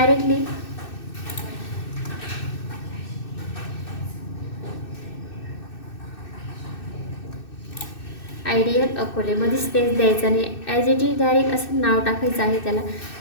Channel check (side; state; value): right; late; 2.6 ms